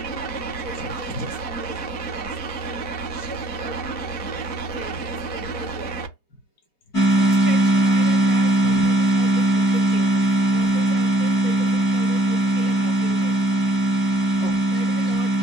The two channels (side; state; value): right; late; 4.6 ms